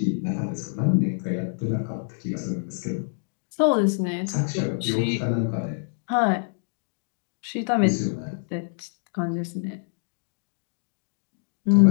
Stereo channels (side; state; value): right; silent; digital silence